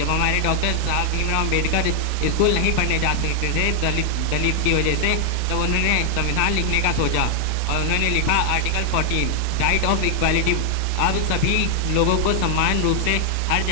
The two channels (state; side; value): different; both; correlation 0.00